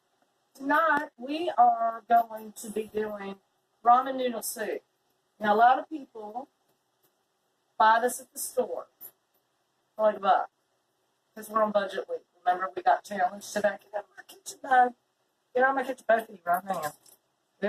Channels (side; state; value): both; identical; correlation 1.00